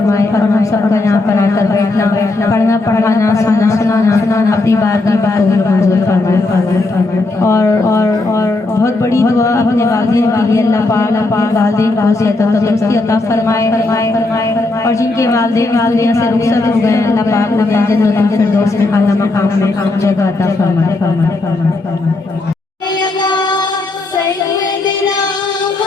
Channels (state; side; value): quieter; right; 3.1 dB